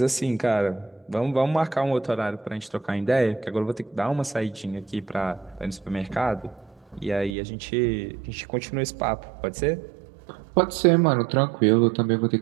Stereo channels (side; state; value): left; drops out; at 7.3 s